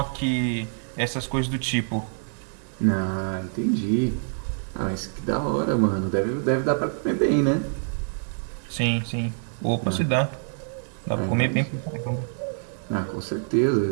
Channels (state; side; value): silent; left; 61 dB below the other